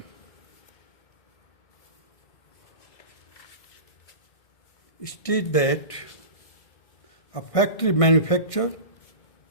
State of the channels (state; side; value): late; right; 1.6 ms